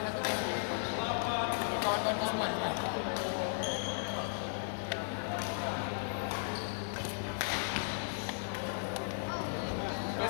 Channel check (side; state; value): right; silent; digital silence